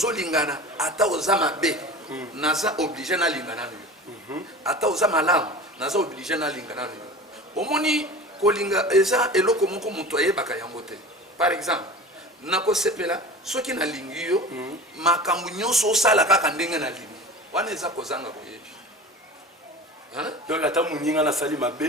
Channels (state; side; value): normal; both; correlation 0.36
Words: ata oza mabe naza obligé na lingana ata oza malamu naza obligé na lingana omoni kolinga eza eloko moko moto ayebaka yango te par exemple nakosepela soki nalingi yo makambo nyonso osala kaka ndenge na lingi wana eza kozanga boyebi donc ata muninga nasali